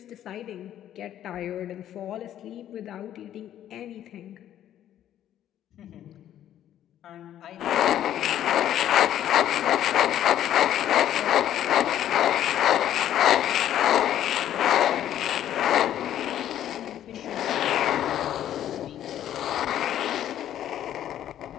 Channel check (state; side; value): quieter; right; 11.3 dB